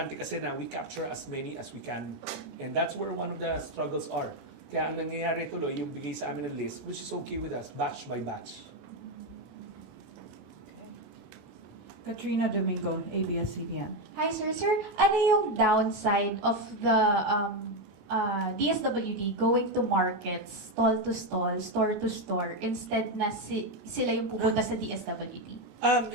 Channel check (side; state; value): left; late; 31 ms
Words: kasi na we capture as many as we can. And that's where one of the struggles are. Kaya ang nangyayari tuloy, yung bigay sa amin ng list, which is okay with us, batch by batch. Katrina Domingo, ABS-CBN. Hi, sir. Sir, ano yung downside of the DSWD going to markets, stall to stall, store to store, instead na sila yung pupunta sa DSWD?